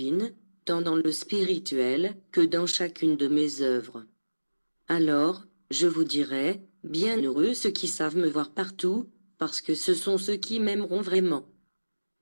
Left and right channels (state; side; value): inverted; both; correlation -1.00